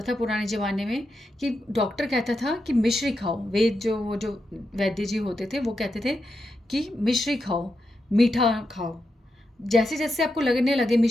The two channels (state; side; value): normal; both; correlation 0.86